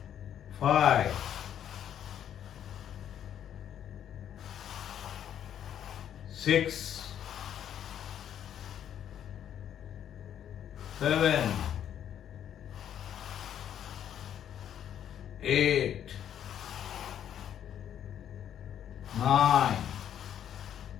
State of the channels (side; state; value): right; quieter; 9.9 dB